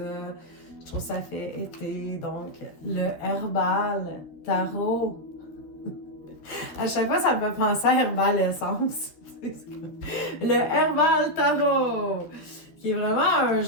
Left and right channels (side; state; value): right; late; 13 ms